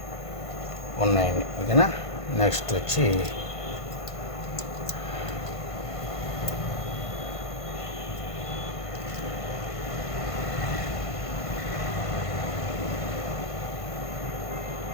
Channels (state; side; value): late; right; 1.5 ms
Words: ఉన్నాయండి. ఓకేనా, నెక్స్ట్ వచ్చి